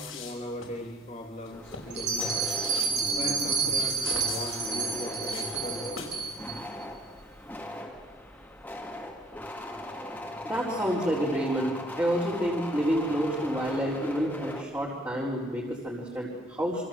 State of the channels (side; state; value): both; normal; correlation 0.55